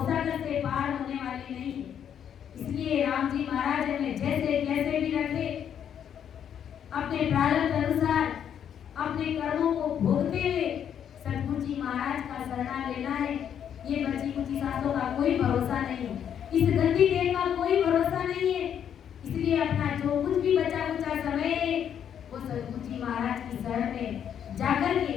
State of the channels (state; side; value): quieter; right; 8.9 dB